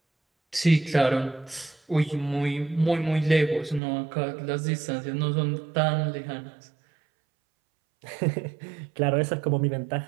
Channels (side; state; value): left; drops out; at 3.8 s